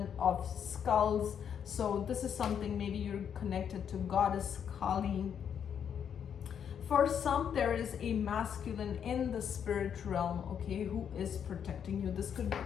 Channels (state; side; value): quieter; right; 8.2 dB